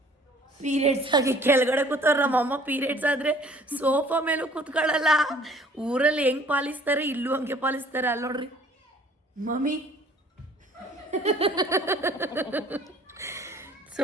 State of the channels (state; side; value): normal; both; correlation 0.54